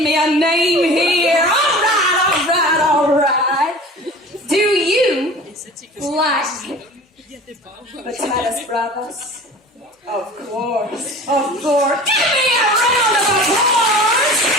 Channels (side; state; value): both; normal; correlation 0.40